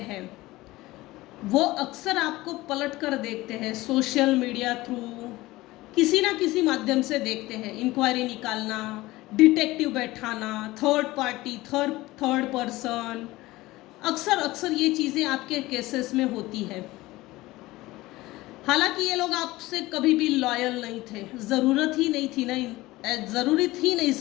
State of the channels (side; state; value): right; quieter; 18.9 dB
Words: वो अक्सर आपको पलट कर देखते हैं, सोशल मीडिया थ्रू किसी ना किसी माध्यम से देखते हैं। इंक्वायरी निकालना, डिटेक्टिव बैठाना, थर्ड पार्टी, थर्ड पर्सन, अक्सर ये चीज़ें आपके केसेस में होती है। हालांकि ये लोग आपसे कभी भी लॉयल नहीं थे, ज़रूरत ही नहीं थी ना, ज़रूरत ही नहीं